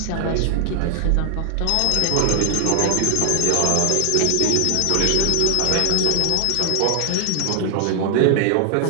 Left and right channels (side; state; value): both; different; correlation 0.00